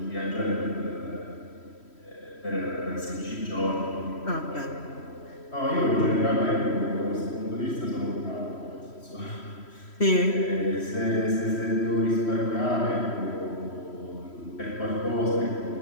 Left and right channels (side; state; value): right; late; 3.1 ms